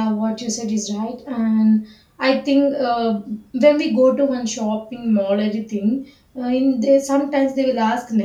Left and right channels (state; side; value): identical; both; correlation 1.00